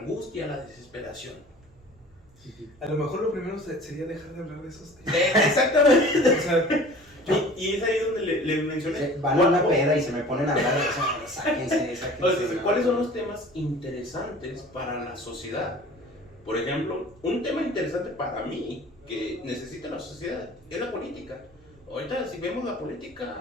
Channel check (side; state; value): right; noise; hum, 29 dB below the sound